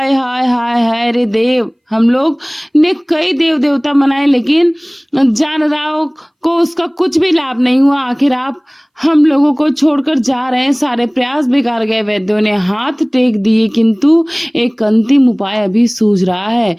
हाय हाय हाय रे देव, हम लोग ने कई देव देवता मनाए, लेकिन जानराव को उसका कुछ भी लाभ नहीं हुआ। आखिर आप हम लोगों को छोड़कर जा रहे हैं, सारे प्रयास बेकार गए। वैद्यों ने हाथ टेक दिए, किंतु एक अंतिम उपाय अभी सूझ रहा है,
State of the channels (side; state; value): both; identical; correlation 1.00